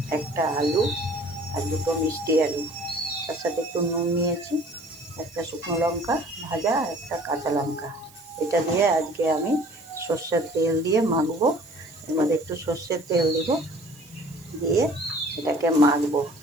একটা আলু, আর দুটো মিষ্টি আলু। তার সাথে একটু নুন নিয়েছি, একটা শুকনো লঙ্কা ভাজা, একটা কাঁচা লঙ্কা। এটা দিয়ে আজকে আমি সর্ষের তেল দিয়ে মাখবো। এর মধ্যে একটু সর্ষের তেল দিব, দিয়ে এটাকে মাখবো।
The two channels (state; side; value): noise; right; hiss, 24 dB below the sound